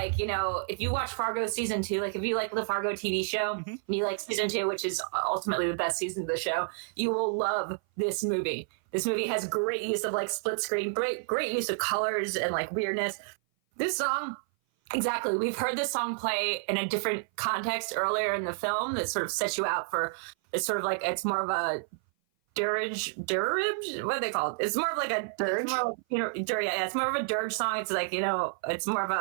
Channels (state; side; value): silent; left; 56 dB below the other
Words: you know, if you watch Fargo season 2, like if you like the Fargo TV show, and you like season 2, which is ultimately the best season of the show, you will love this movie. This movie has great use of like split screen, great use of colors and like weirdness. This song, exactly. We've heard this song play in a different context earlier in the film that sort of sets you out for. It's sort of like it's more of a dirge. What are they called? It's more of like a dirge. It's more of a dirge song. It's like, you know, it's more of